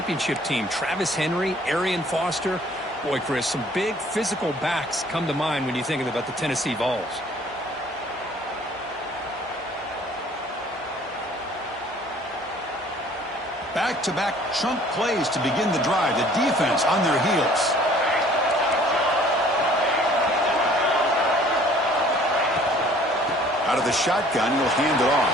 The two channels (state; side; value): normal; both; correlation 0.55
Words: team. Travis Henry, Arian Foster. Boy, Chris, some big physical backs come to mind when you think about the Tennessee Vols. Back-to-back chunk plays to begin the drive. The defense on their heels. Out of the shotgun, he'll hand it